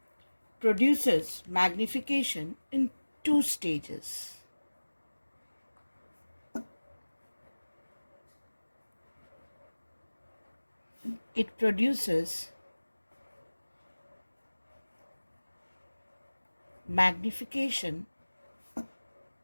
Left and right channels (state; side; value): inverted; both; correlation -1.00